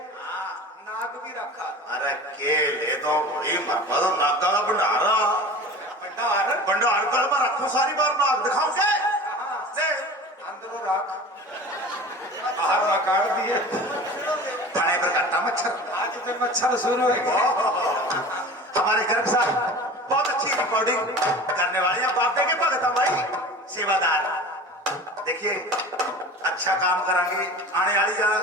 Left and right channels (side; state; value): both; normal; correlation 0.38